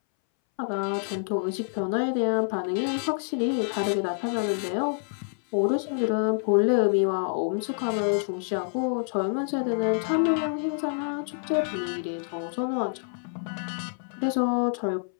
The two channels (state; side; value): silent; right; 60 dB below the other